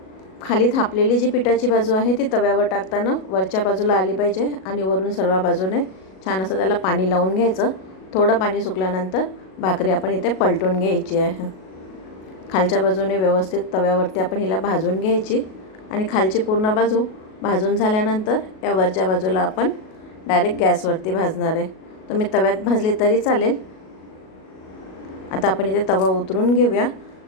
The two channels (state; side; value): late; right; 37 ms